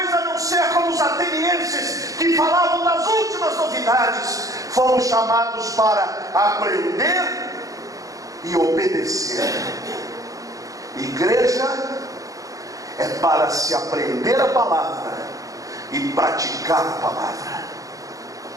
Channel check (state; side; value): late; left; 0.17 ms